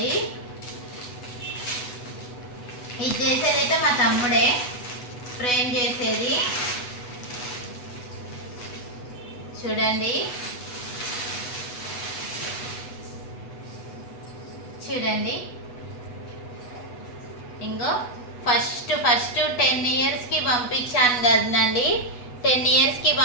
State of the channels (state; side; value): late; right; 8.1 ms